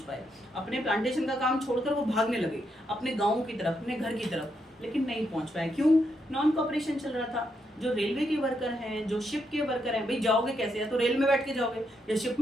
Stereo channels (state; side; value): normal; both; correlation 0.80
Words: पाए। अपने प्लांटेशन का काम छोड़कर वो भागने लगे अपने गाँव की तरफ, अपने घर की तरफ, लेकिन नहीं पहुँच पाए। क्यों? नॉन कोऑपरेशन चल रहा था। जो रेलवे के वर्कर हैं, जो शिप के वर्कर हैं, भाई जाओगे कैसे? या तो रेल में बैठ के जाओगे या शिप